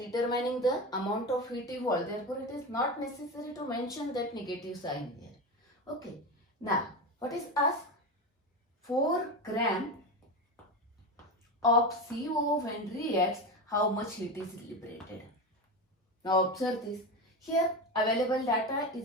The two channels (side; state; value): both; normal; correlation 0.20